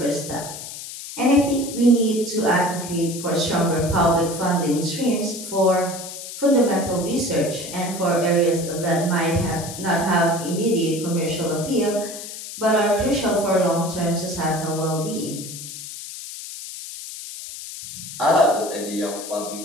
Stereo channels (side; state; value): left; noise; hiss, 10 dB below the sound